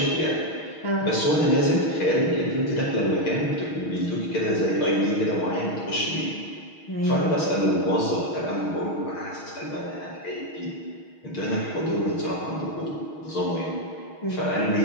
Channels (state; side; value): late; right; 6.4 ms